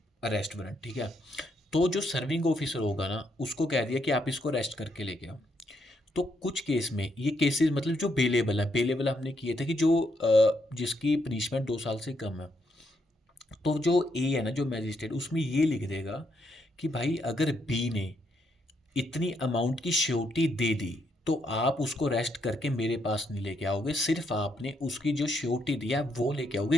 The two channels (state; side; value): normal; both; correlation 0.77